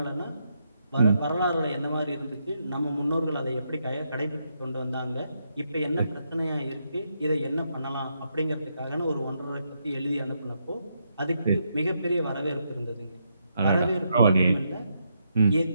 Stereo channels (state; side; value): inverted; both; correlation -0.80